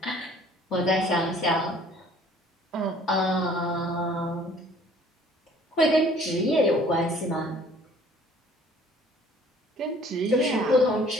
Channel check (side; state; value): both; normal; correlation 0.55